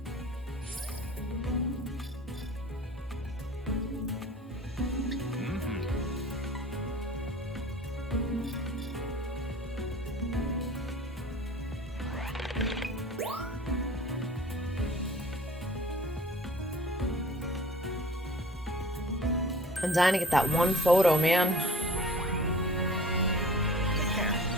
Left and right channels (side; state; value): both; normal; correlation 0.46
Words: Mm-hmm. I'm dying to get that one photo, man. Take care.